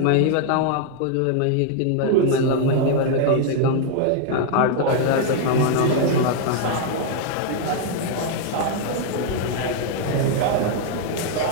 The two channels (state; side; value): different; both; correlation 0.00